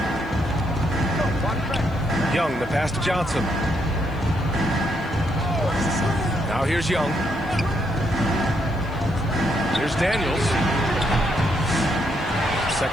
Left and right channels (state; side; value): noise; left; hiss, 30 dB below the sound